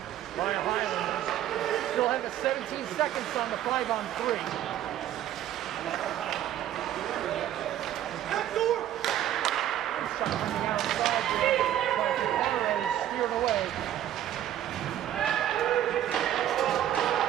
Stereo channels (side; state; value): left; quieter; 11.8 dB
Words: by Highlanders. Still have 17 seconds on the 5-on-3.